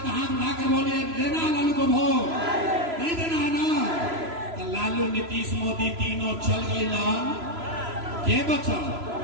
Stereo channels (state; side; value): late; left; 3.0 ms